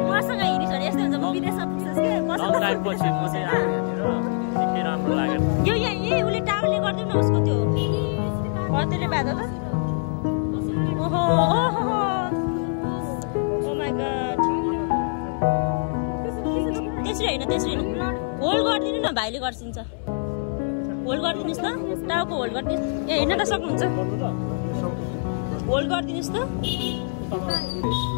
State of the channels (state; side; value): silent; right; digital silence